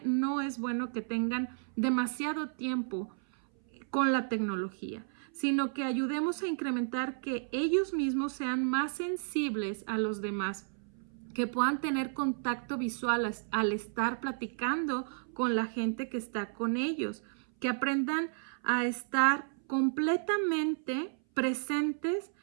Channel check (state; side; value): silent; left; 56 dB below the other